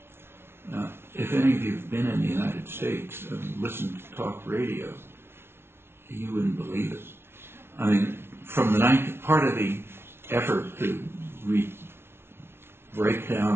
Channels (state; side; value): late; left; 0.12 ms